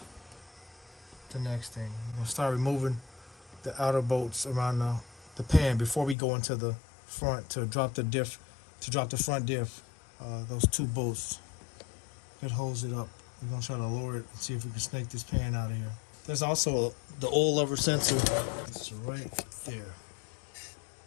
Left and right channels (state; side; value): drops out; right; at 6.2 s